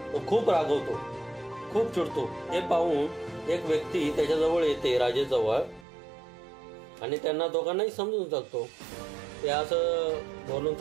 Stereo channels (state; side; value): drops out; left; at 5.9 s